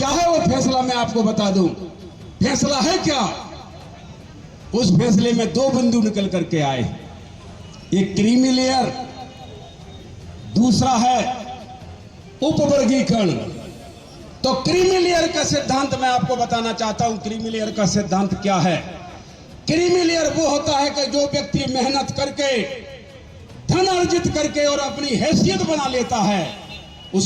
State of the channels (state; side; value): identical; both; correlation 1.00